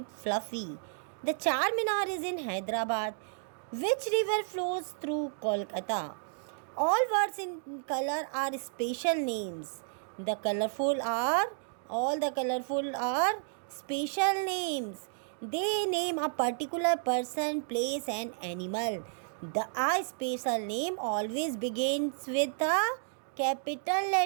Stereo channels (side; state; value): left; silent; digital silence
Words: Fluffy. The Charminar is in Hyderabad. Which river flows through Kolkata? All words in color are special names. All the colorful are special names. They name a particular person, place and animal. The I special name always begins with a capital